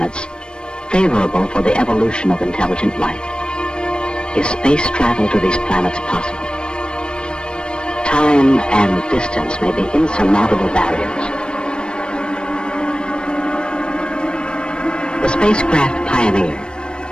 favorable for the evolution of intelligent life. Is space travel to these planets possible? Time and distance may be insurmountable barriers. The spacecraft Pioneer,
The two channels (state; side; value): late; right; 0.053 ms